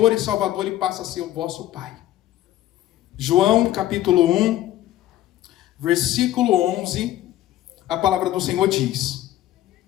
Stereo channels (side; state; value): right; quieter; 13.8 dB